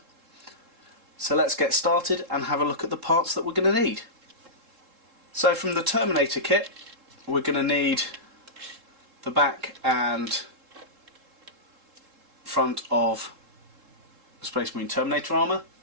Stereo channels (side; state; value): left; late; 3.7 ms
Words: So let's get started and have a look at the parts that we're going to need. So from the Terminator kit we're going to need the back and front of Space Marine Terminator armour,